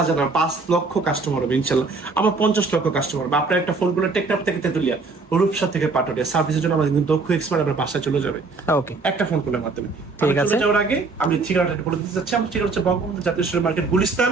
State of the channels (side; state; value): left; quieter; 4.0 dB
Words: না 5 লক্ষ কাস্টমার হবে ইনশাল্লাহ, আমার 50 লক্ষ কাস্টমার হবে। আপনার একটা ফোন করে টেকনাফ থেকে তেতুলিয়া, রূপসা থেকে পাটুরিয়া সার্ভিসের জন্য আমাদের কিন্তু দক্ষ এক্সপার্ট আপনার বাসায় চলে যাবে। ওকে, একটা ফোন কলের মাধ্যমে। ঠিক আছে, যাওয়ার আগে আমি ঠিকানাটা বলে দিতে চাচ্ছি। আমার ঠিকানা হচ্ছে বঙ্গবন্ধু জাতীয় স্টোর মার্কেট, গুলিস্তান।